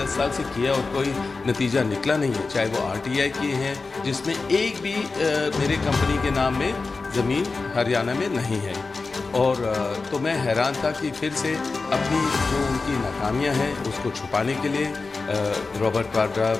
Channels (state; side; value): quieter; right; 4.0 dB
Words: साल से किया और कोई नतीजा निकला नहीं है, चाहे वो आरटीआई किए हैं जिसमें एक भी मेरे कंपनी के नाम में ज़मीन हरियाणा में नहीं है। और तो मैं हैरान था कि फिर से अपनी जो उनकी नाकामियां हैं उसको छुपाने के लिए रॉबर्ट वाड्रा,